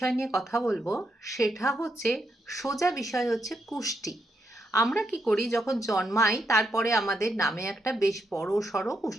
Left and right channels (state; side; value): normal; both; correlation 0.81